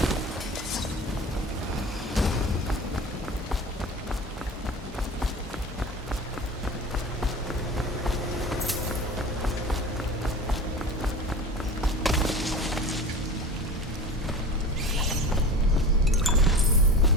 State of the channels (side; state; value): both; normal; correlation 0.35